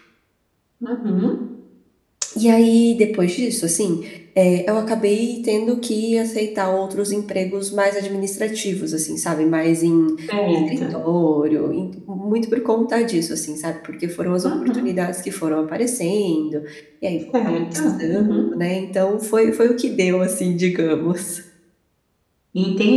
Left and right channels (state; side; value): identical; both; correlation 1.00